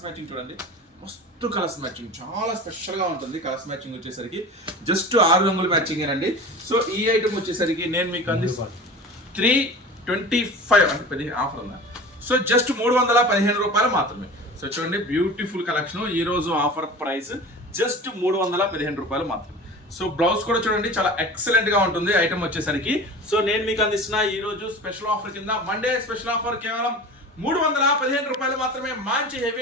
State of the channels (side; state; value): both; normal; correlation 0.36